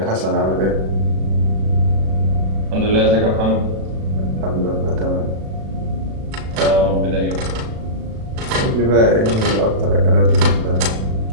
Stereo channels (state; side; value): late; left; 36 ms